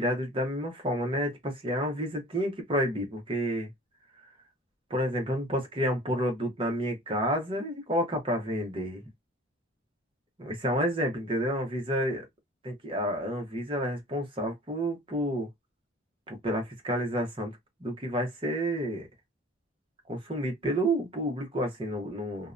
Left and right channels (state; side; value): normal; both; correlation 0.45